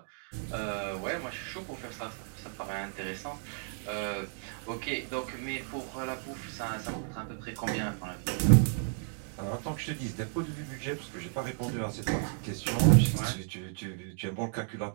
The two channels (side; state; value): left; silent; 56 dB below the other